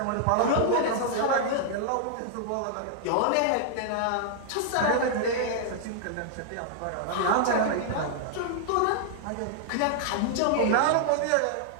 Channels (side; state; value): both; different; correlation -0.01